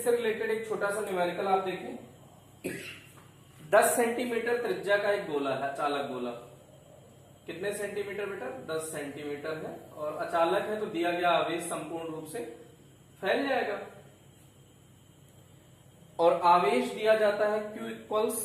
रिलेटेड एक छोटा सा न्यूमेरिकल आप देखें, 10 सेंटीमीटर त्रिज्या का एक गोला है, अचालक गोला। कितने सेंटीमीटर बेटा, 10 सेंटीमीटर है, और अचालक है तो दिया गया आवेश संपूर्ण रूप से फैल जाएगा। और आवेश दिया जाता है Q इक्वल्स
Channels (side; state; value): both; identical; correlation 1.00